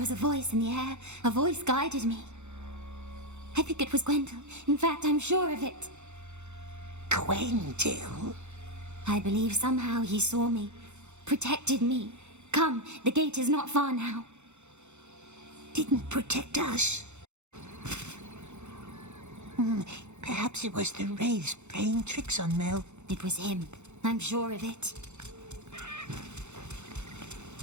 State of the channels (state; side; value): late; left; 0.83 ms